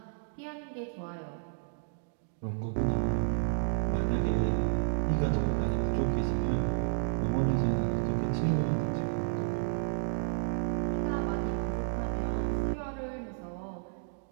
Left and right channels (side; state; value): left; silent; digital silence